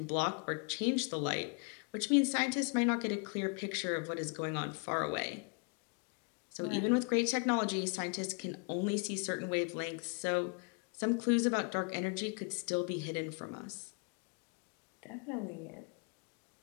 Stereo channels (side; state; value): right; quieter; 37.2 dB